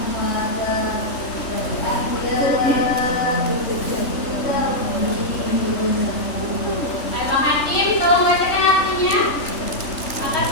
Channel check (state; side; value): late; right; 3.4 ms